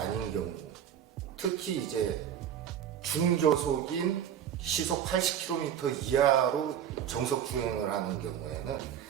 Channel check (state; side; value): quieter; left; 9.4 dB